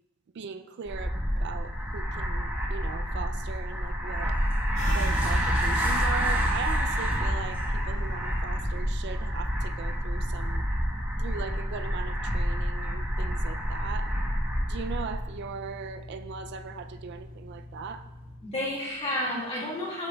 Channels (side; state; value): both; normal; correlation 0.72